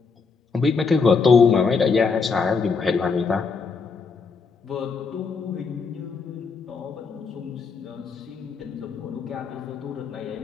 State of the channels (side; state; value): right; quieter; 5.0 dB